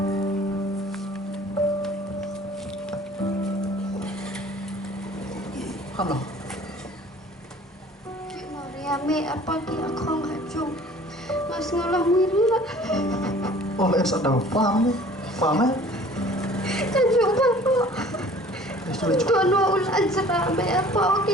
Halo. Ki Mariame apa ki aku ngajung. Mas ngolah mirna. Oh, em sợ đầu paham nih, paham ya? Kajung bapak. Sudah cukup. Tuan ulan serame apa ki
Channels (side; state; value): both; normal; correlation 0.49